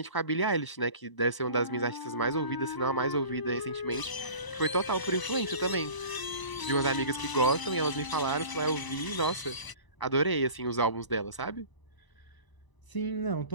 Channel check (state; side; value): late; right; 1.0 ms